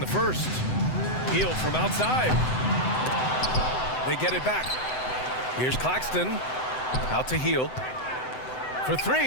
first. Healed from outside. They get it back. Here's Claxton. Out to Heal. For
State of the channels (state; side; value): late; right; 7.9 ms